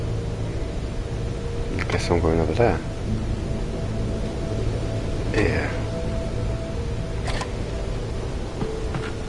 I guess I'm going over there. Yeah.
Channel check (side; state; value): both; identical; correlation 1.00